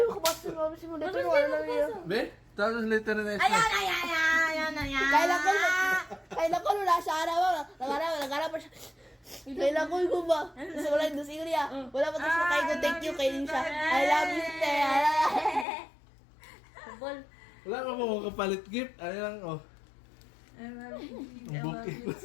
makabasa ng mga simulator. Wala lang yun. Be, tapos later na next Ayan. Kailan ko nula siya araw. Nagharap pa siya. Kailan ko ba? Gusto ko lang doon sa Ilya. Wala pa tapos na kayo. Thank you kay siya. I love you, te. Football. Wala ka po kapalit gift. Ano lang, oh. I love you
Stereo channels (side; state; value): right; drops out; at 15.7 s